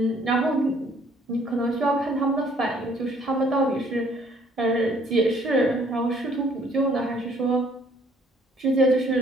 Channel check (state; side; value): normal; both; correlation 0.61